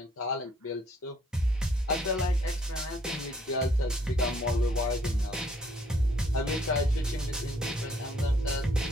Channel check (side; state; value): both; normal; correlation 0.65